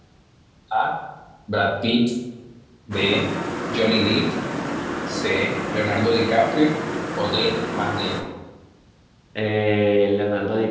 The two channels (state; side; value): identical; both; correlation 1.00